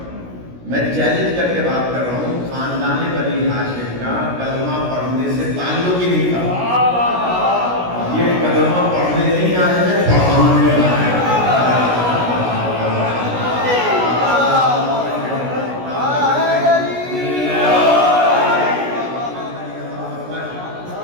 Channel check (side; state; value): left; late; 16 ms